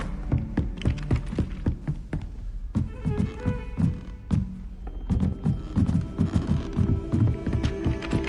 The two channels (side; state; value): both; identical; correlation 1.00